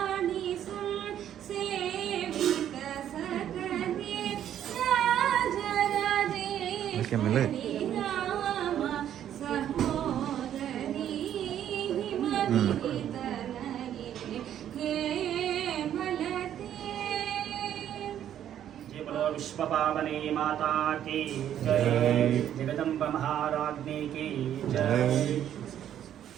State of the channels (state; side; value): quieter; left; 10.5 dB